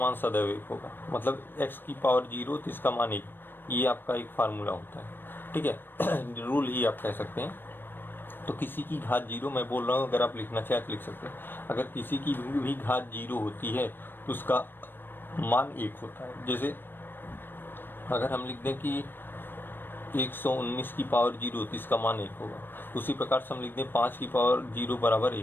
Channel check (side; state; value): right; late; 0.096 ms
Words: सदैव 1 होगा, मतलब x की पावर 0 तो इसका मान 1, ये आपका एक फार्मूला होता है, ठीक है, रूल ही आप कह सकते हैं। तो किसी की घात 0, मैं बोल रहा हूँ, अगर आप लिखना चाहे तो लिख सकते हैं, अगर किसी की भी घात 0 होती है तो उसका मान 1 होता है। जैसे अगर हम लिख दें कि 119 की पावर 0 तो इसका मान 1 होगा, उसी प्रकार से हम लिख दें 5 की पावर 0 बराबर